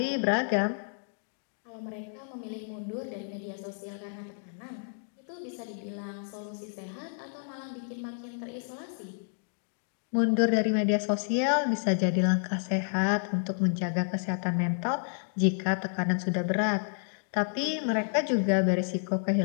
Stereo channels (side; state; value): right; silent; digital silence